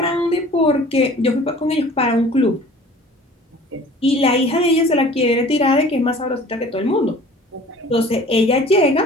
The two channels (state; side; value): normal; both; correlation 0.47